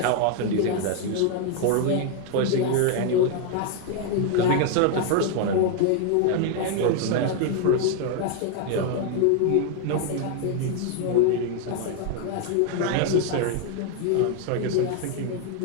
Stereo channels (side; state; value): both; different; correlation 0.01